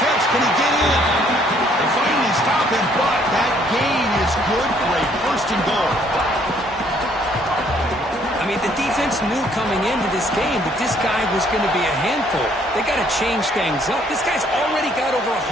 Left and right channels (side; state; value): both; normal; correlation 0.64